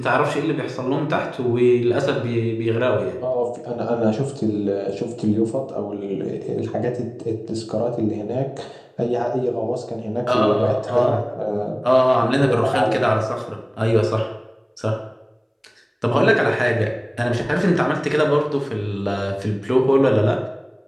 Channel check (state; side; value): identical; both; correlation 1.00